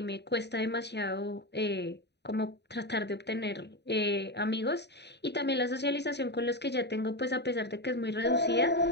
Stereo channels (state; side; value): late; right; 0.50 ms